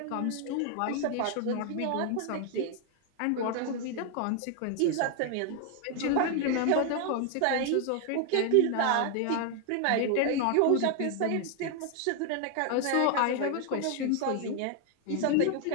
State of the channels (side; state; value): both; different; correlation 0.00